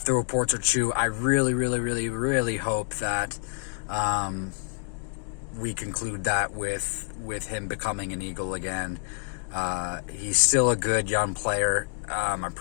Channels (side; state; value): right; silent; 60 dB below the other